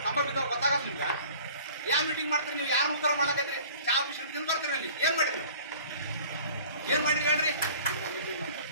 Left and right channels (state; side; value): inverted; both; correlation -0.47